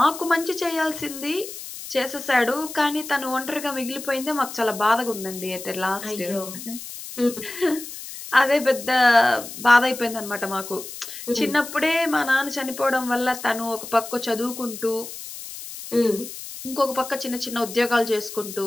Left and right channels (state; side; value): noise; left; hiss, 11 dB below the sound